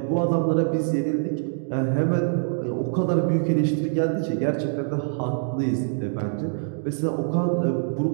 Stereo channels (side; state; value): left; silent; digital silence